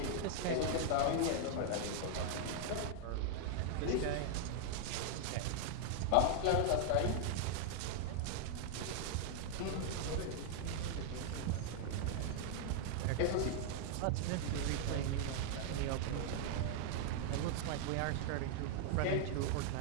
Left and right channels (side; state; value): both; different; correlation 0.00